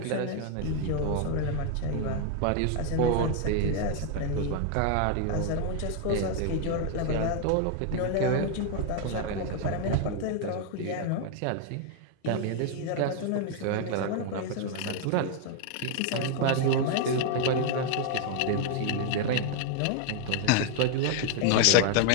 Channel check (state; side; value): different; both; correlation 0.00